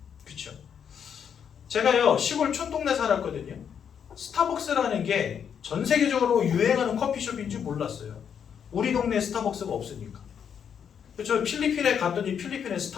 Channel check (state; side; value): quieter; right; 7.8 dB